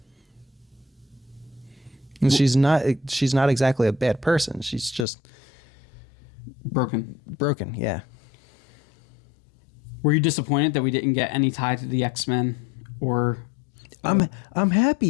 And she's not exactly a bad person. She's just broken, yeah. Were you disappointed that we didn't get any tie to the X-Men or I'm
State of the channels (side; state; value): right; drops out; at 5.1 s